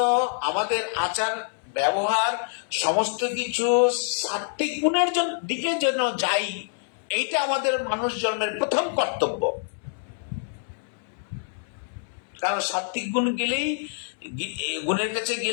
আমাদের আচার ব্যবহার সমস্ত কিছু সাত্বিক গুণের দিকে যেন যাই, এইটা আমাদের মানুষ জন্মের প্রথম কর্তব্য। কারণ সাত্বিক গুণ গেলেই, গুণের কাছে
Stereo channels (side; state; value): right; silent; 61 dB below the other